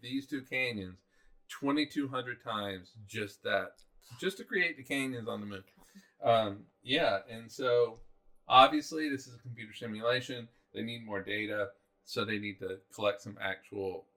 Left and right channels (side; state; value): both; identical; correlation 1.00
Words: these two canyons 2,200 times just to create the canyons on the moon. And so obviously this is a computer simulation. They need more data, so they need to collect some actual